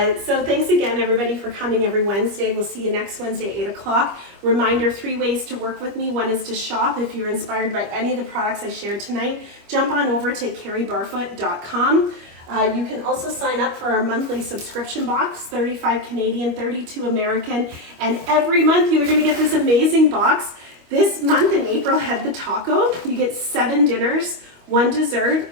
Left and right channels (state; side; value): late; left; 25 ms